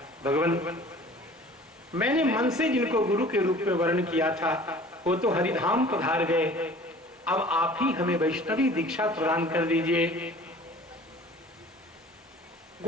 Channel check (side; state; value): both; normal; correlation 0.47